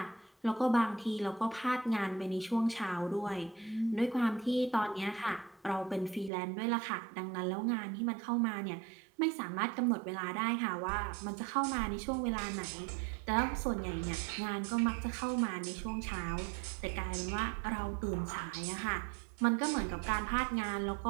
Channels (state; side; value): drops out; left; at 6.3 s